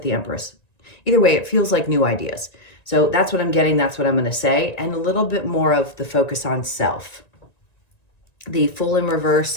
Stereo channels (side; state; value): right; late; 1.9 ms